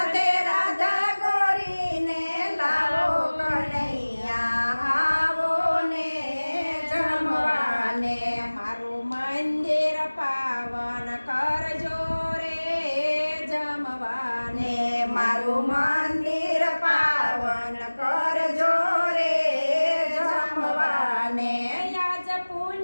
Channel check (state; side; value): inverted; both; correlation -1.00